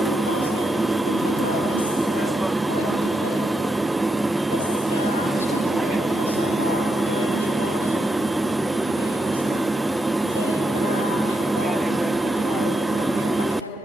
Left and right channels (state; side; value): normal; both; correlation 0.84